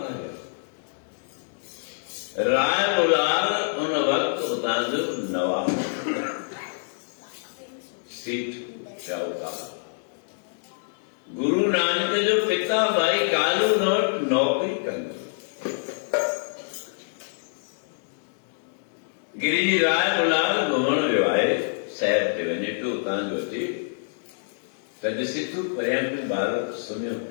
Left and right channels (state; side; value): silent; right; digital silence